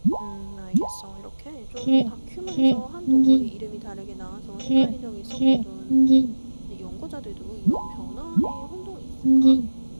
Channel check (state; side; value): inverted; both; correlation -1.00